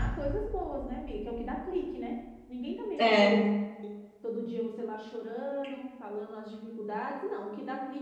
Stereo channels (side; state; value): both; identical; correlation 1.00